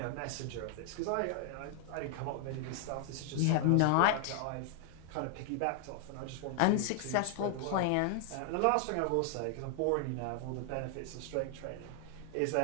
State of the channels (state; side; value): different; both; correlation 0.00